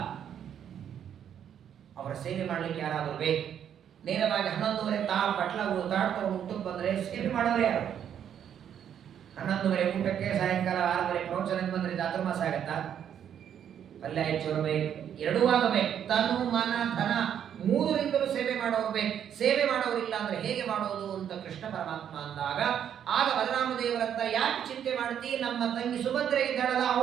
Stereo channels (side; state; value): left; quieter; 9.1 dB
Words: ಅವರ ಸೇವೆ ಮಾಡ್ಲಿಕ್ಕೆ ಯಾರಾದರೂ ಬೇಕು. ನೇರವಾಗಿ 11:30 ಬಟ್ಲಗಳು ತಾಡ್ತವ್ರು ಊಟಕ್ಕೆ ಬಂದ್ರೆ ಸೇವೆ ಮಾಡೋರು ಯಾರು? 11:30 ಊಟಕ್ಕೆ, ಸಾಯಂಕಾಲ 6:30 ಪ್ರವಚನಕ್ಕೆ ಬಂದ್ರೆ ಚಾತುರ್ಮಾಸ ಆಗತ್ತಾ? ಪಲ್ಯ ಹೆಚ್ಚು ಬೇಕು, ಎರಡೂ ಆಗಬೇಕು. ತನು ಮನ ಧನ 3ರಿಂದಲೂ ಸೇವೆ ಮಾಡೋರು ಬೇಕು. ಸೇವೆ ಮಾಡೋರಿಲ್ಲ ಅಂದ್ರೆ ಹೇಗೆ ಮಾಡೋದು ಅಂತ ಕೃಷ್ಣ ಪರಮಾತ್ಮ ಅಂದಾಗ, ಆಗ ಬಲರಾಮದೇವರಂತ, ಯಾಕೆ ಚಿಂತೆ ಮಾಡ್ತಿ? ನಮ್ಮ ತಂಗಿ ಸುಭದ್ರೆ ಇದ್ದಾಳಲ್ಲ,